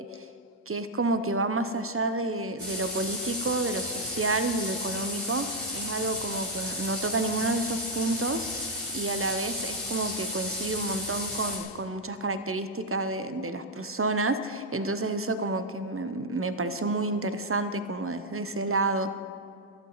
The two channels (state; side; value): normal; both; correlation 0.00